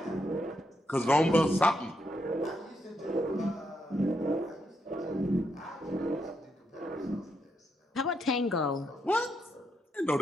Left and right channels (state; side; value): normal; both; correlation 0.80